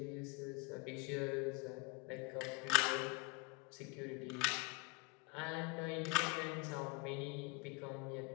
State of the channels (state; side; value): quieter; right; 28.8 dB